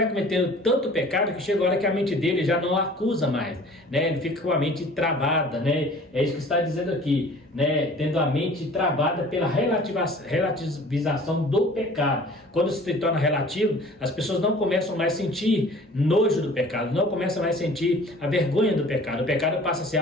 cometendo tanto pecado que chega a hora que a mente dele já não acusa mais, né? Ele fica com a mente travada, né? É isso que está dizendo aqui, né? Tendo a mente travada pela relativização do pecado. Quando se torna relativo, as pessoas não começam mais a sentir nojo do pecado, não começam mais a sentir a vergonha do pecado. O pecado passa a ser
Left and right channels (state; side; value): normal; both; correlation 0.48